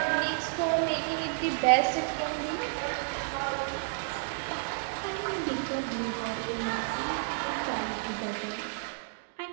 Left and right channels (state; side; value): silent; left; digital silence